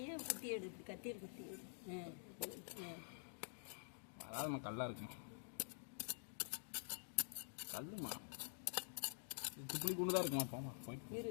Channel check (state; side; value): silent; right; digital silence